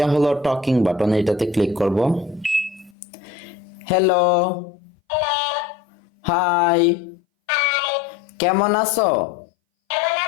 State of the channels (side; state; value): right; drops out; at 2.9 s